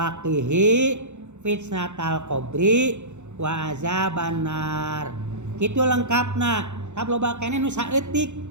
qihi fitnatal qabri wa azaban nar. Kitu lengkapna. Tap loba keneh nu saeutik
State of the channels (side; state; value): left; late; 0.83 ms